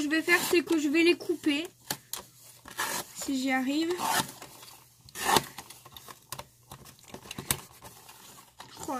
vais faire, c'est que je vais les couper. Si j'y arrive. Oh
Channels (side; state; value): both; identical; correlation 1.00